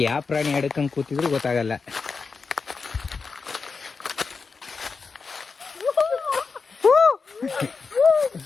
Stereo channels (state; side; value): quieter; right; 4.8 dB